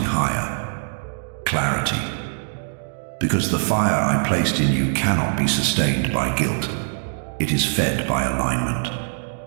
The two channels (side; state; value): left; silent; digital silence